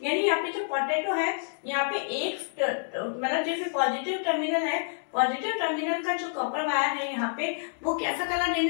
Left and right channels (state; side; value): silent; right; digital silence